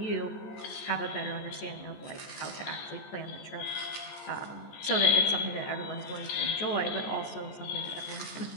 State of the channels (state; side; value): late; right; 14 ms